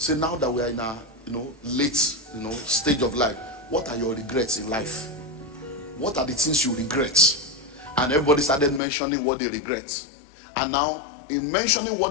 now that we are in a late stage of life, what are your regrets in life? What are the things you regret? And everybody started mentioning what they regret. And now, in mentioning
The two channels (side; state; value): right; drops out; at 8.8 s